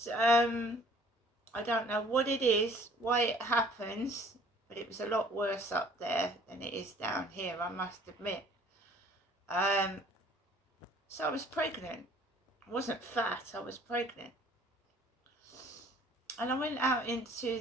I don't know what it is, why it happens, but it was a lot worse up there than it is down here, I must admit. So I was pregnant. I wasn't fat, I was pregnant. And I went out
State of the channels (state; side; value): normal; both; correlation 0.55